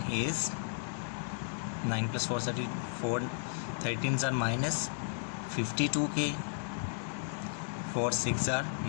is 9 plus 4 34, 13s are minus 52k, 4 6 are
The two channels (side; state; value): right; silent; digital silence